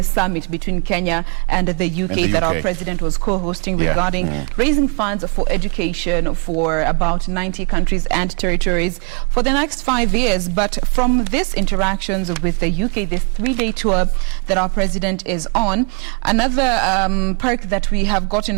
summit between Kenya and the UK that our president was co-hosting regarding raising funds for education for about 90 countries and territories for the next 5 years. But from these interactions with the UK, this 3-day tour that our president is on, another perk that we have gotten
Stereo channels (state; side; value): quieter; left; 36.4 dB